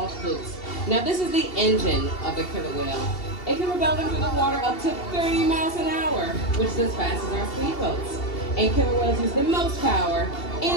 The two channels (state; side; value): late; right; 2.7 ms